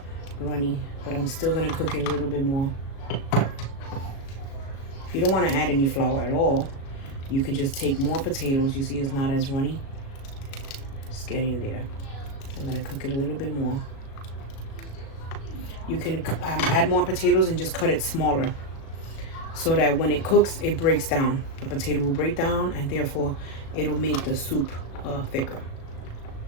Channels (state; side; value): late; right; 36 ms